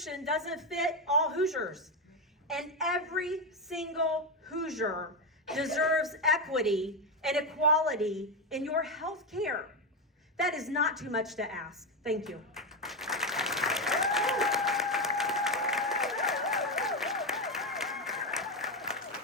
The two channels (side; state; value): both; normal; correlation 0.11